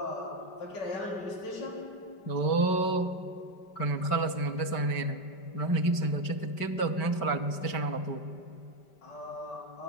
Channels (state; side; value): late; right; 5.1 ms